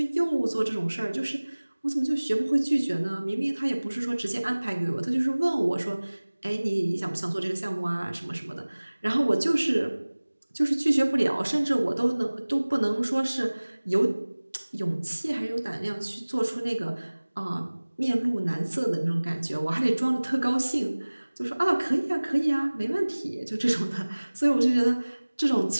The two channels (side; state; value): both; inverted; correlation -1.00